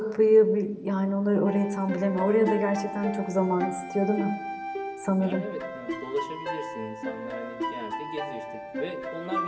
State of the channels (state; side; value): identical; both; correlation 1.00